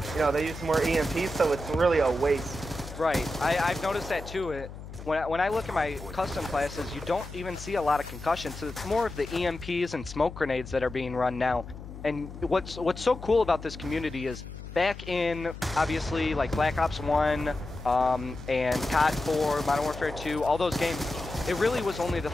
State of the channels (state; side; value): noise; left; hum, 12 dB below the sound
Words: They use more EMP, so it's really a waste. Right. I've noticed that too. When I look at my custom classes, you don't even see a lot of concussions, so it's more of the EMPs and smoke grenades that are being run now. And what's so cool about this community is back in, obviously, like Black Ops 1 and COD 4, Modern Warfare 2, all those games, it really was only the